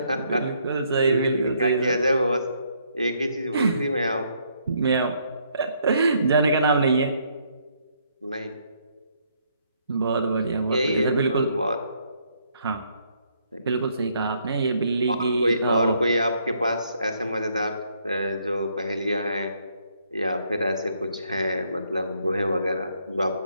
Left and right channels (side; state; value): both; inverted; correlation -0.71